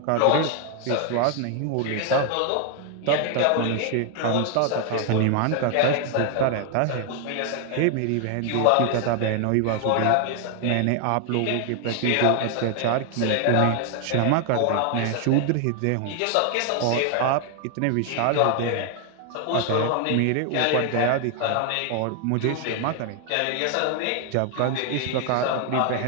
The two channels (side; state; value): both; different; correlation 0.00